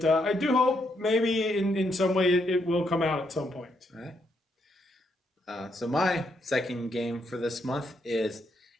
I do hope maybe in some way it will come out at some point. All right. So my second game for this month is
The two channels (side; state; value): both; normal; correlation 0.77